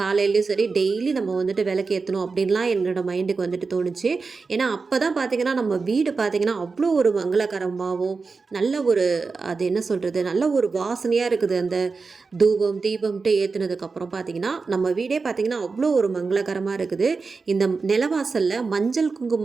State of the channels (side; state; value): left; quieter; 4.4 dB